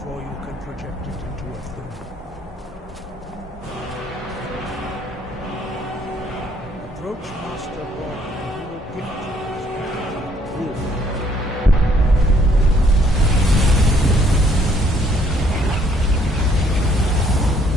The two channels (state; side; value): normal; both; correlation 0.65